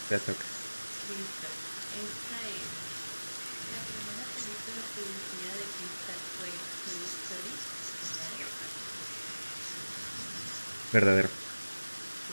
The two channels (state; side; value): inverted; both; correlation -1.00